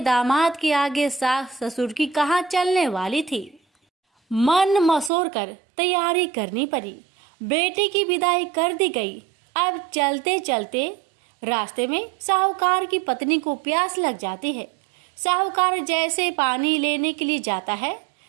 के आगे सास ससुर की कहाँ चलने वाली थी। मन मसोर कर तैयारी करनी पड़ी। बेटी की विदाई कर दी गई। अब चलते चलते रास्ते में साहूकार की पत्नी को प्यास लग जाती है। साहूकार जैसे पानी लेने के लिए जाता है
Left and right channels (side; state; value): left; drops out; at 5.1 s